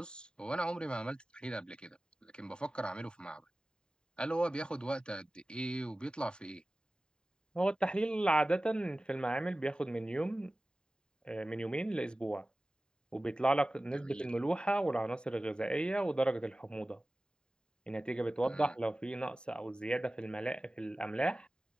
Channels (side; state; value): right; late; 0.048 ms